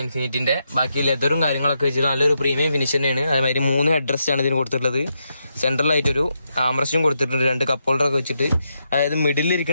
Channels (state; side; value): inverted; both; correlation -0.83